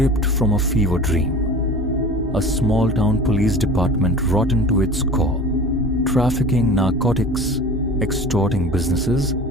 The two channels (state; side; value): normal; both; correlation 0.38